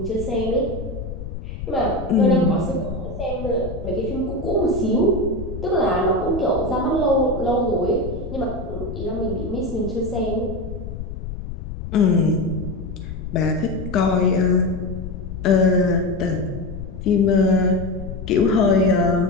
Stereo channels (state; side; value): noise; left; rumble, 9 dB below the sound